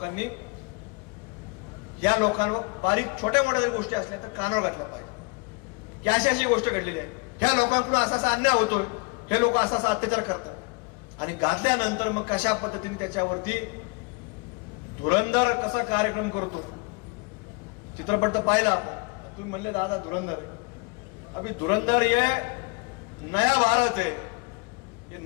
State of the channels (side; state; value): right; quieter; 30.5 dB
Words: या लोकांवर बारीक छोट्या मोठ्या गोष्टी असल्या तर कानावर घातलं पाहिजे की अशी अशी गोष्ट घडलेली आहे, ह्या लोकांकडून असा असा अन्याय होतोय, हे लोक असा असा अत्याचार करतात. आणि घातल्यानंतर मग कशा पद्धतीने त्याच्यावरती धुरंधर कसा कार्यक्रम करतो, चित्रपट तर पाहिला आपण. तुम्ही म्हणले दादा धुरंधर, अभी धुरंधर ये नया भारत है. ये